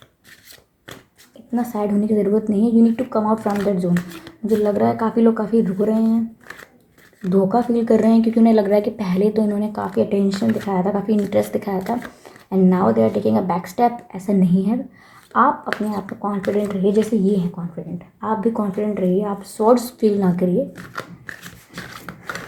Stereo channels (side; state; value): both; identical; correlation 1.00